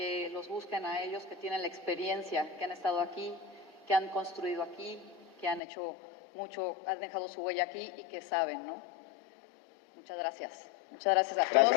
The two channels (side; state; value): right; drops out; at 5.6 s